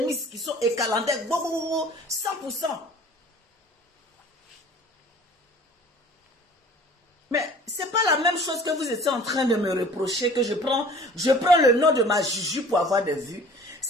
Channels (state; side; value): normal; both; correlation 0.47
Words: qui sont écalandés, 100%. Mais c'est pas la même chose que vous étiez en train de me reprocher, que je prends le nom de ma Juju pour avoir des vues.